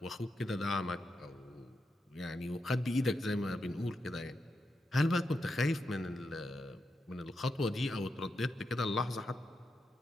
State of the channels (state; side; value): normal; both; correlation 0.86